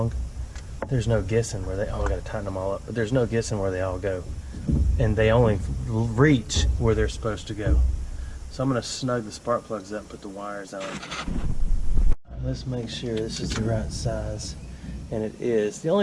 there's no guessing where they, oh, I got to tighten them all up, but there's no guessing where they all go. And they only reach where they're supposed to go. So I'm going to snug the spark plugs up and put the wires on. Let's make sure this is the right size. And it is. The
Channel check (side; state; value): both; identical; correlation 1.00